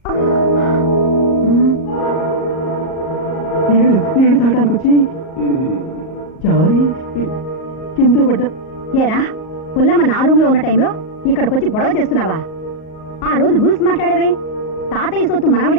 నీళ్లు తాగడానికి వచ్చి జారి కింద పడ్డా. ఏరా పుల్లమ్మ నా రూమ్ లో ఉన్న టైంలో ఇక్కడికి వచ్చి గొడవ చేస్తున్నావా? ఆ రోజు రూల్స్ మాట్లాడావే, తాతయ్య సొత్తు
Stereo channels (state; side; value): late; right; 38 ms